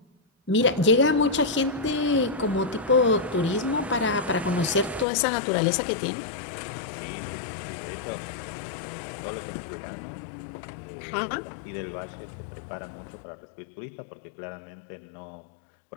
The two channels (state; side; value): drops out; right; at 5.1 s